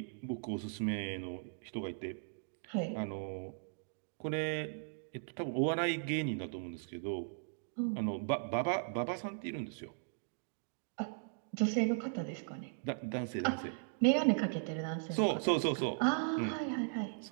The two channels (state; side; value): silent; left; digital silence